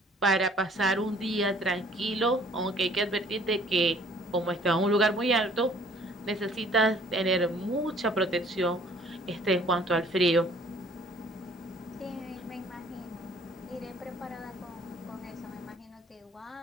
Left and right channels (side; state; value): both; normal; correlation 0.56